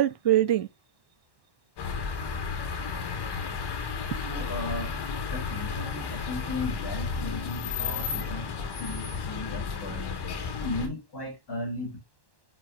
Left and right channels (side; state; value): right; late; 1.1 ms